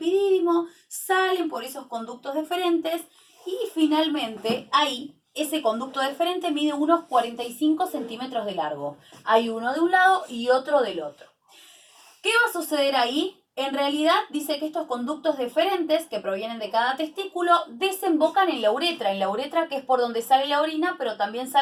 salen por esos conductos deferentes y finalmente ahí ese conducto deferente mide unos 45 centímetros de largo. Hay uno de un lado y otro del otro. ¿Qué va a suceder ahí? En realidad dice que estos conductos deferentes que provienen de cada testículo desembocan en la uretra que es por donde sale la orina, pero también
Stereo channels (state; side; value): identical; both; correlation 1.00